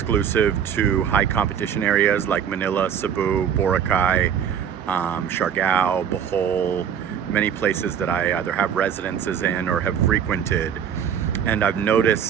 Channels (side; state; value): left; quieter; 8.4 dB